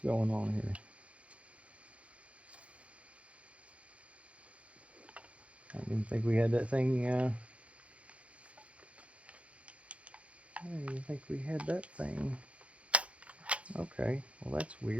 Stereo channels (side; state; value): left; late; 0.063 ms